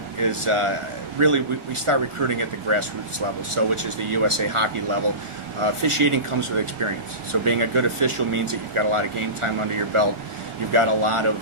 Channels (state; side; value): late; left; 1.4 ms